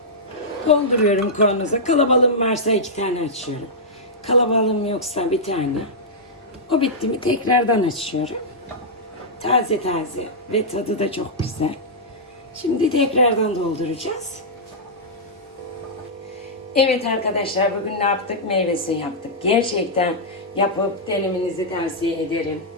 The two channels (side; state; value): both; normal; correlation -0.10